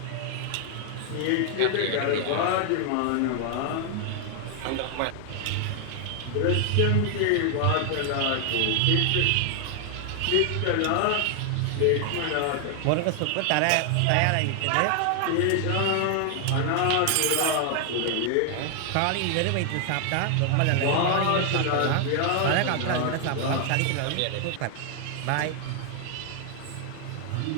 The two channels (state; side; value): different; both; correlation 0.00